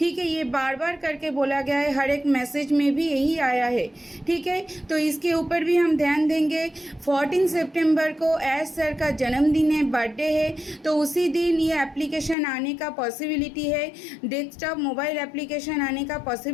है। ये बार बार करके बोला गया है, हर एक मैसेज में भी यही आया है, ठीक है। तो इसके ऊपर भी हम ध्यान देंगे। 14 सितंबर को एस सर का जन्मदिन है, बर्थडे है, तो उसी दिन ये एप्लीकेशन आने का पॉसिबिलिटी है, डेस्कटॉप मोबाइल एप्लीकेशन आने का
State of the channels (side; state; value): right; drops out; at 12.4 s